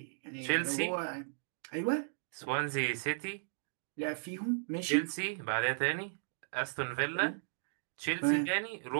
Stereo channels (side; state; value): left; silent; digital silence